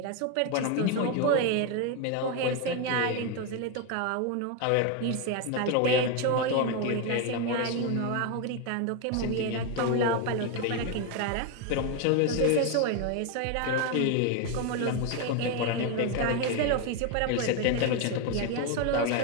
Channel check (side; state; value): both; different; correlation 0.02